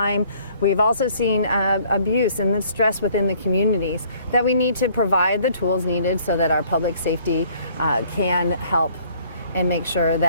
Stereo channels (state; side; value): inverted; both; correlation -0.59